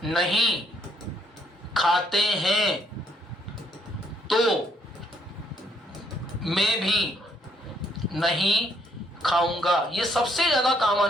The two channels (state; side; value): normal; both; correlation 0.69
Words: नहीं खाते हैं तो मैं भी नहीं खाऊंगा। ये सबसे ज्यादा काम